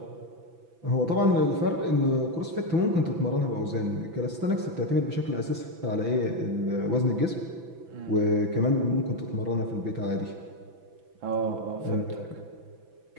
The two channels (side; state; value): left; late; 6.0 ms